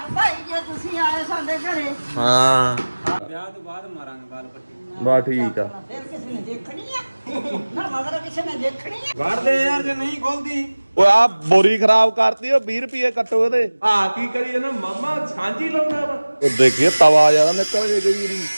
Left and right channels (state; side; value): inverted; both; correlation -1.00